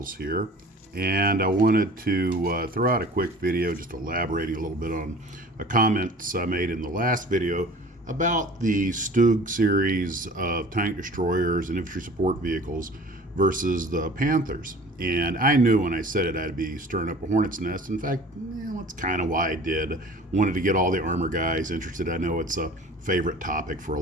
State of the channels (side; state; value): both; normal; correlation 0.45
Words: here, and I wanted to throw out a quick video just elaborating a little bit on a comments I made in the last video about the Stug series of tank destroyers and infantry support vehicles versus the Panthers. And I knew when I said it I'd be stirring up a hornet's nest. In fact, that's kind of why I did. Wanted to get all the armor guys interested. I know it's a favorite topic for a